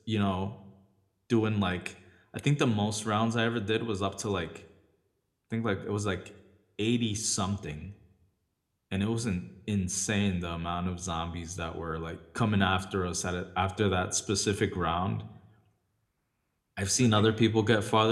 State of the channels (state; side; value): identical; both; correlation 1.00